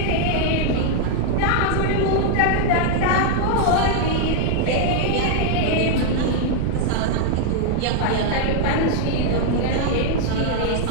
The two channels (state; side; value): different; both; correlation 0.00